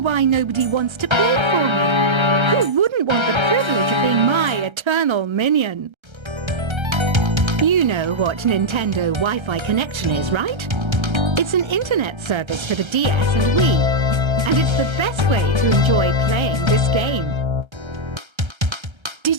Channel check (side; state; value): left; late; 1.3 ms